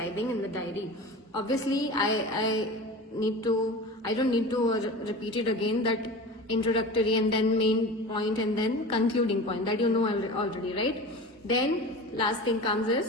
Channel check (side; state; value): both; normal; correlation 0.33